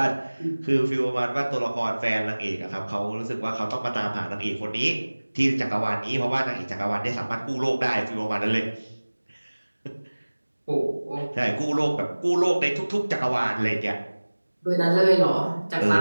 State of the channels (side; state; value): both; inverted; correlation -1.00